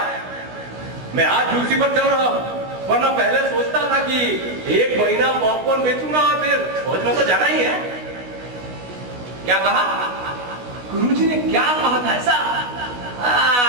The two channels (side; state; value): left; late; 16 ms